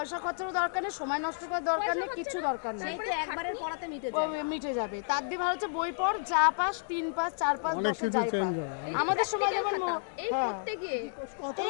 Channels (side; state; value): right; silent; digital silence